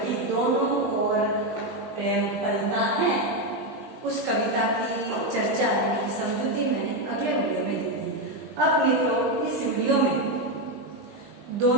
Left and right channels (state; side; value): late; left; 20 ms